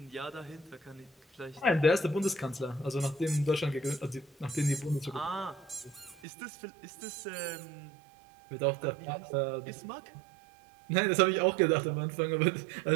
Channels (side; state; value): left; drops out; at 6.2 s